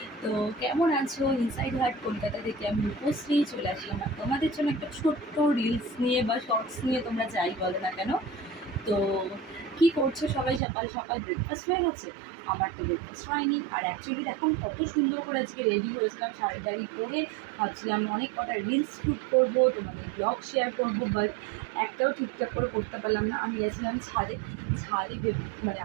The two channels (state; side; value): drops out; left; at 10.6 s